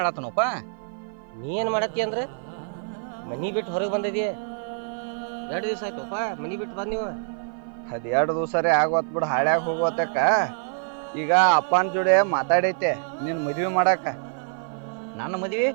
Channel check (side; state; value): left; silent; 56 dB below the other